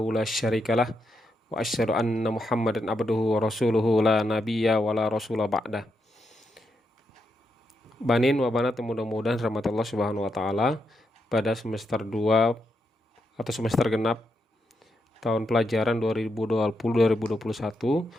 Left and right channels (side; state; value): both; normal; correlation 0.82